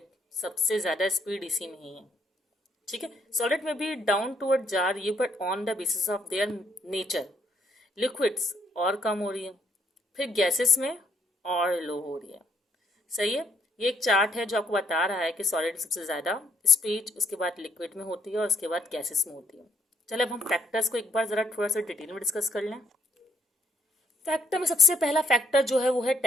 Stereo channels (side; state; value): both; normal; correlation 0.71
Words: सबसे ज्यादा स्पीड इसी में ही है, ठीक है। सॉलिड में भी डाउन टूवर्ड जा रही है, but on the basis of their nature. Liquids और कम हो रही है, फिर गैसेस में और लो हो रही है, सही है। ये एक चार्ट है जो आपको बता रहा है कि सॉलिड सबसे ज्यादा स्पीड उसके बाद लिक्विड में होती है और उसके बाद गैसेस में होती है। चलो अब हम फैक्टर्स को एक बार जरा थोड़ा सा डिटेल में डिस्कस कर लें। फैक्टर में सबसे पहला फैक्टर जो है वो है